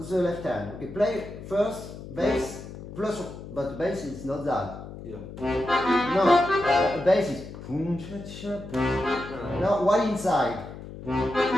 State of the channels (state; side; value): noise; left; hum, 12 dB below the sound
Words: the left hand. Okay, play first bass plus, but bass is not that. Yeah. No, bass is. Now while inside.